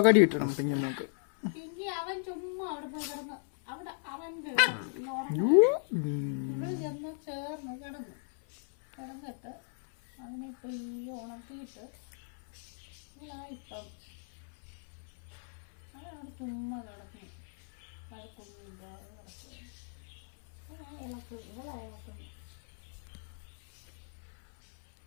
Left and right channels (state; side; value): silent; right; 54 dB below the other